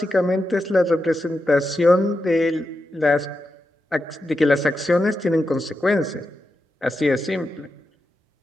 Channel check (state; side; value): normal; both; correlation 0.88